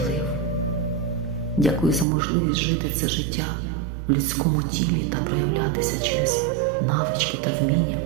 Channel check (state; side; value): drops out; left; at 2.1 s